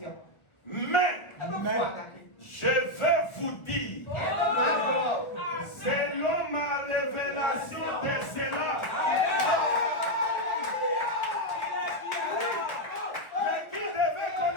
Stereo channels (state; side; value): late; right; 1.4 ms